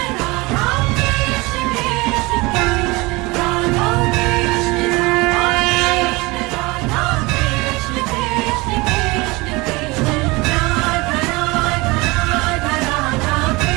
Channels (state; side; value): quieter; left; 23.7 dB